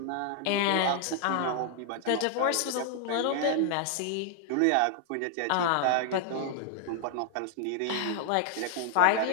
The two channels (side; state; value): both; different; correlation -0.01